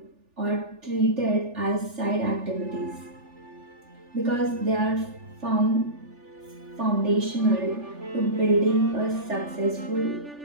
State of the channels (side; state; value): left; late; 3.4 ms